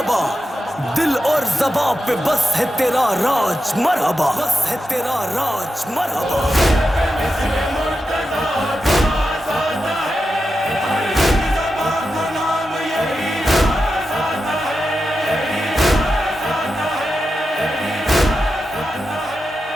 دل اور زباں پہ بس ہے تیرا راج مرحبا، بس ہے تیرا راج مرحبا۔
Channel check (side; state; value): both; normal; correlation 0.90